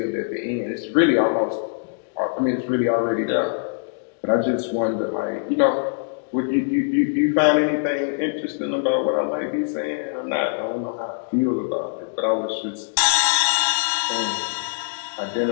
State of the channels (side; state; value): right; silent; digital silence